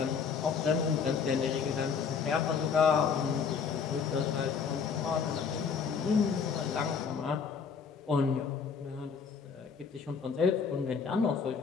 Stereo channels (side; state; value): right; quieter; 6.1 dB